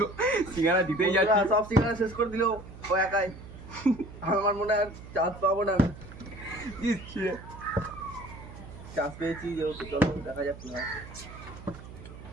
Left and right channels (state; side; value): noise; right; hum, 15 dB below the sound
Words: সিঙ্গারা জিতেই যাচ্ছে। সব সিঙ্গারা শেষ করে দিল ও একাই। আমার মনে হয় চান্স পাবো না। চান্স পেয়েছি যেহেতু, চলো দেখা যাক কি হয়।